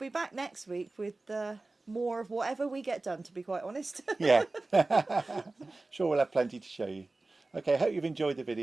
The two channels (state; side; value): quieter; left; 3.2 dB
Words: back next week with more of whatever we get done, to be quite honest. Yeah. Sure, we'll have plenty to show you. Okay, hope you've enjoyed the